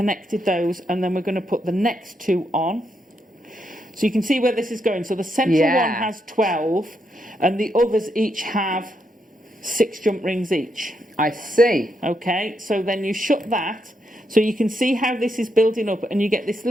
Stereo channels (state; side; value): normal; both; correlation 0.80